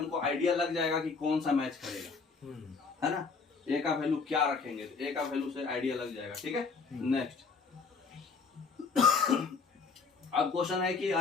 आइडिया लग जाएगा कि कौन सा मैच करेगा, है ना। A का वैल्यू क्या रखेंगे, तो A का वैल्यू से आइडिया लग जाएगा, ठीक है। नेक्स्ट अब क्वेश्चन है कि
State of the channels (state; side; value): quieter; right; 4.9 dB